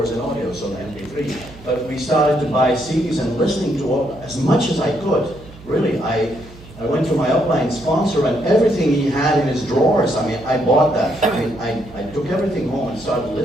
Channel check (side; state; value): right; noise; hum, 20 dB below the sound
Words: and audio, so MP3. But we started to buy CDs and listening to as much as I could. Really, I went to my upline sponsor, and everything he had in his drawers, I mean, I bought that. I mean, I took everything home and started